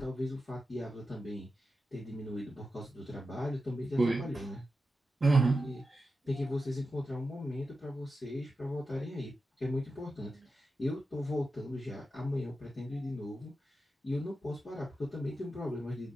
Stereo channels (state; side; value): normal; both; correlation 0.90